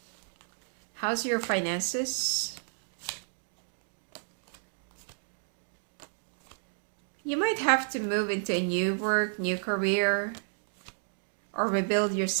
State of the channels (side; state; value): left; silent; digital silence